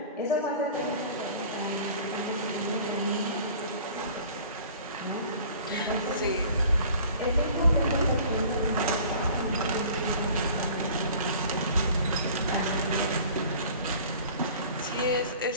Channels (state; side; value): inverted; both; correlation -0.46